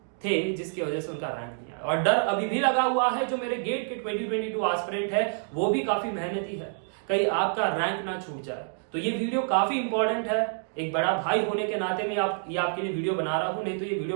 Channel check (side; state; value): left; silent; digital silence